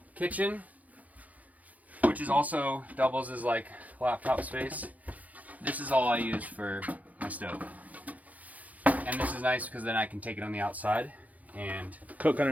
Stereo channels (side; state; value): left; late; 0.076 ms